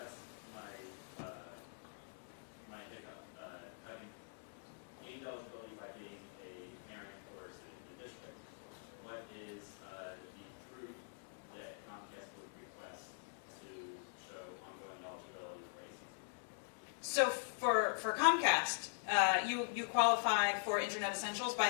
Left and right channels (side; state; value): right; silent; digital silence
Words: my hiccup. Having gained eligibility by being a parent or a student in the district, what is the proof that Comcast would request to show ongoing eligibility for ACP? So for Comcast, you qualify for Internet Essentials by